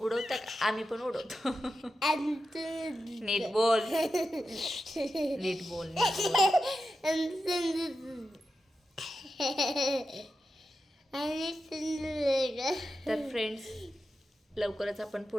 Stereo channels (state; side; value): normal; both; correlation 0.90